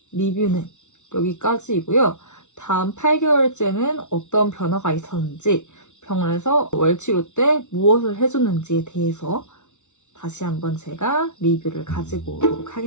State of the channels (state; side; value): late; right; 0.83 ms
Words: 리뷰는 여기까지이고요. 다음 8개월째는 어떤 변화가 있었는지, 병원에서 월치료 때 무엇을 해줬는지에 대해서 다시 한번 제가 리뷰를 가지고 오도록